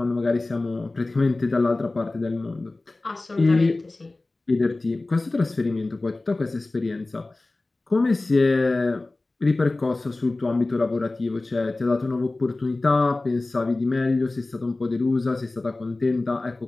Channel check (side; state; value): right; quieter; 3.1 dB